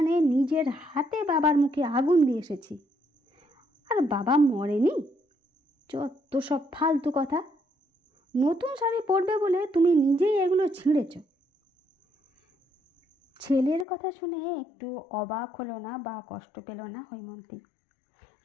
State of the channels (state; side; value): drops out; right; at 13.9 s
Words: নিজের হাতে বাবার মুখে আগুন দিয়ে এসেছি, আর বাবা মরেনি। যত সব ফালতু কথা। নতুন শাড়ি পরবে বলে তুমি নিজেই এগুলো ছিঁড়েছ। ছেলের কথা শুনে একটু অবাক হলো না বা কষ্ট পেল না হৈমন্তী।